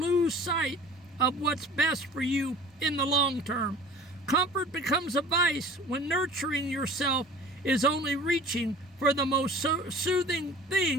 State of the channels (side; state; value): both; normal; correlation 0.44